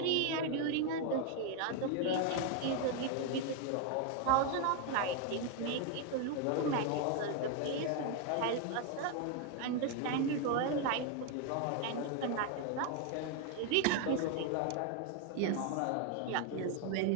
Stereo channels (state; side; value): different; both; correlation 0.01